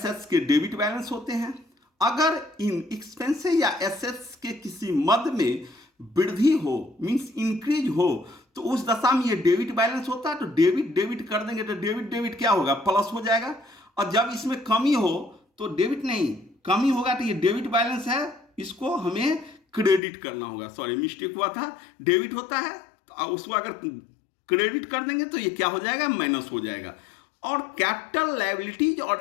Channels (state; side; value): drops out; right; at 20.0 s